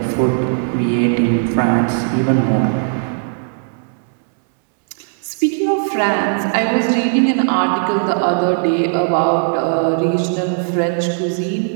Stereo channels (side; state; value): left; silent; 61 dB below the other